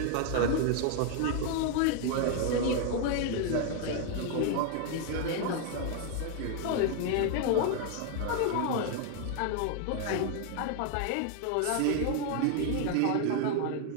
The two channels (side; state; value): both; different; correlation 0.00